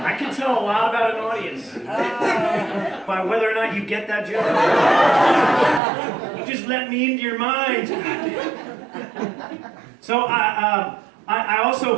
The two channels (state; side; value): drops out; left; at 5.8 s